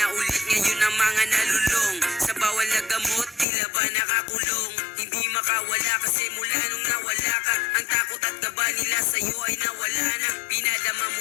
ulit ngayon ang mga nalulong, sa bawal na gamot tila ba nakakulong. Hindi makawala kasi mula nung nawala ka, ang takot at kaba nila sa'yo ay nawala na. Pinadama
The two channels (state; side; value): drops out; right; at 3.5 s